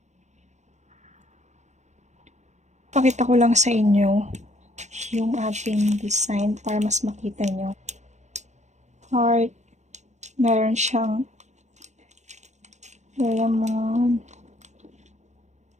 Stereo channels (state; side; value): late; left; 0.34 ms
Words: Pakita ko lang sa inyo yung ating design para mas makita nyo. Heart, meron siyang diamond,